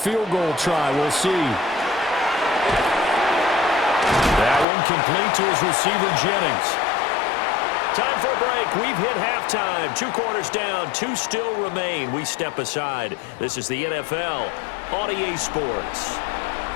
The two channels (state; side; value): drops out; right; at 4.7 s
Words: goal try. We'll see. That one complete to his receiver, Jennings. Time for a break. We've hit halftime. 2 quarters down. 2 still remain. We step aside. This is the NFL on EA Sports.